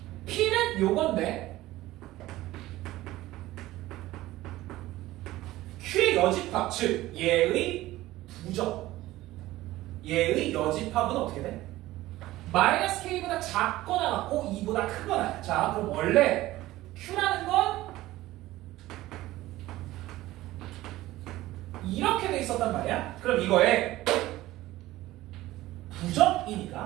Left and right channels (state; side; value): quieter; left; 16.7 dB